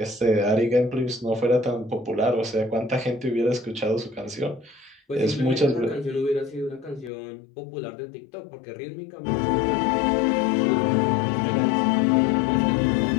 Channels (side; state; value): right; drops out; at 7.1 s